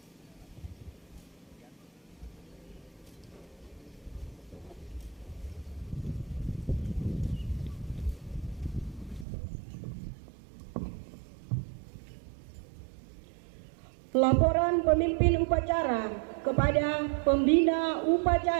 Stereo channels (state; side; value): drops out; left; at 9.2 s